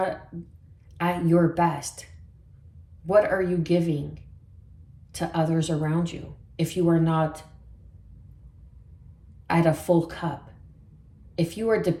at your best, what are you giving to others around you if you are not at a full cup? If you are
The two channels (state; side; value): identical; both; correlation 1.00